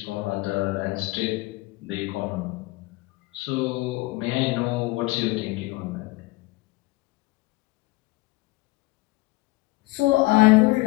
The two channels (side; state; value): right; quieter; 21.8 dB